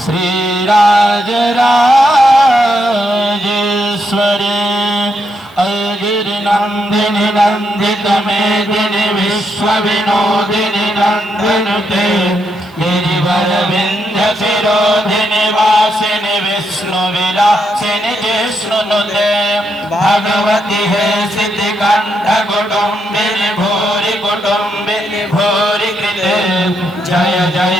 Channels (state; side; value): noise; left; hiss, 30 dB below the sound